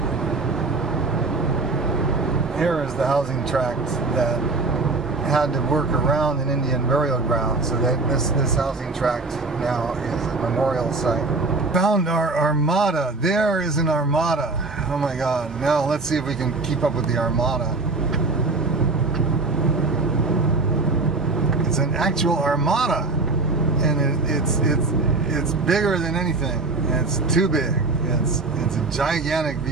Here is the housing tract that had to work around an Indian burial ground, so that this housing tract now is a memorial site. Found our Armada. There is an Armada. Oh my God. Now let's see if we can keep up with the Armada. It's an actual Armada. and it's bigger than anything. It's too big. It's a gigantic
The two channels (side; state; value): left; quieter; 3.6 dB